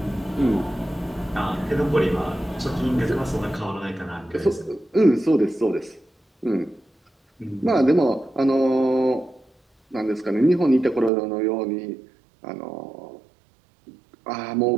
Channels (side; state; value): left; drops out; at 11.1 s